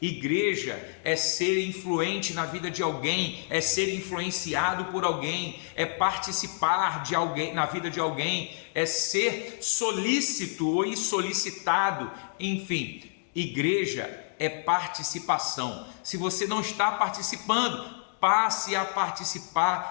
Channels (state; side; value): silent; right; digital silence